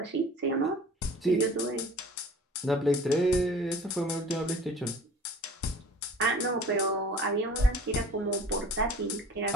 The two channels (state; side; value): normal; both; correlation 0.45